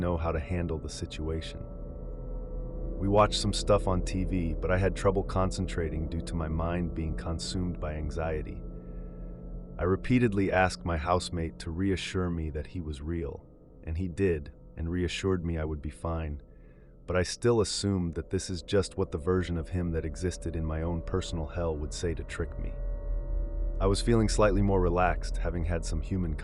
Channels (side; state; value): both; identical; correlation 1.00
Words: how to handle the situation. We watched some stuff on TV, but I had trouble concentrating due to my mind being consumed by anxiety. I repeatedly asked my housemate to reassure me that he was real, and he did, and reassured me I would be fine. But I still assumed that this is just what the version of him that existed in my own personal hell would say to trick me. I was feeling slightly more relaxed, having had some human